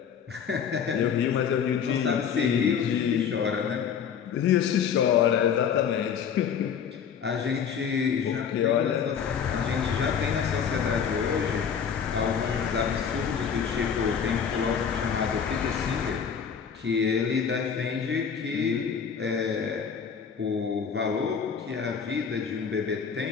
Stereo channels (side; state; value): right; quieter; 7.2 dB